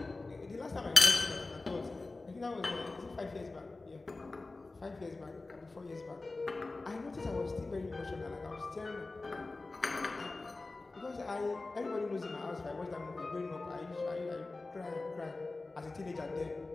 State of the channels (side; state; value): right; quieter; 3.4 dB